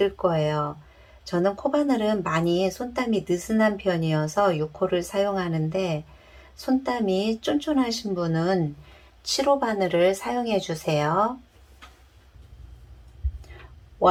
거예요. 저는 코바늘은 많이 손땀이 느슨한 편이어서 6호를 사용하는데 손땀이 쫀쫀하신 분은 7호 바늘을 사용해 주세요.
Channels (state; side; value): identical; both; correlation 1.00